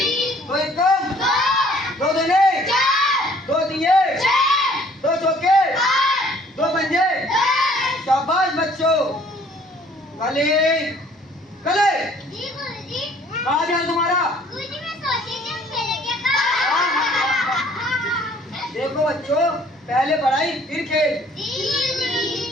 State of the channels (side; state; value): both; normal; correlation 0.57